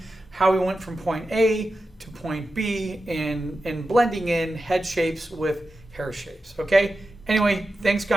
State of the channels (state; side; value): normal; both; correlation 0.92